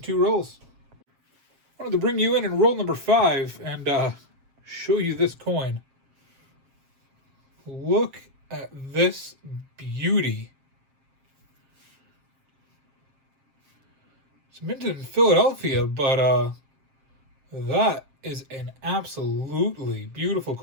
2 rolls. I wanted to bring you in roll number 5 and show you this coin. Look at this beauty. It's minted in Philadelphia, but that is an absolutely beautiful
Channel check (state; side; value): late; left; 7.5 ms